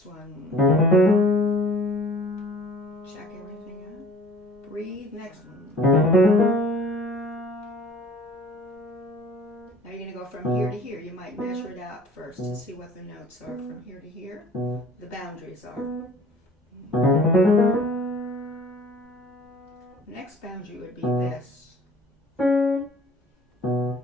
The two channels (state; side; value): normal; both; correlation 0.49